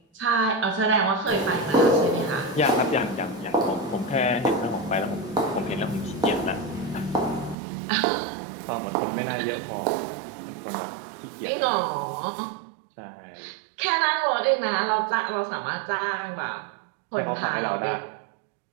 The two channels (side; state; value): left; drops out; at 7.6 s